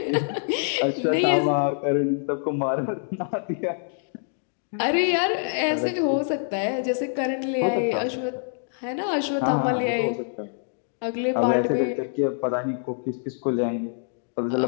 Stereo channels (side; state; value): right; silent; digital silence